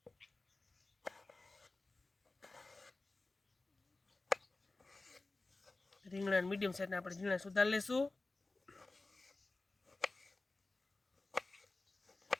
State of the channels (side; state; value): right; quieter; 3.3 dB